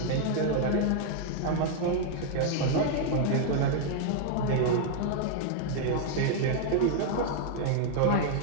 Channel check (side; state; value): both; different; correlation 0.00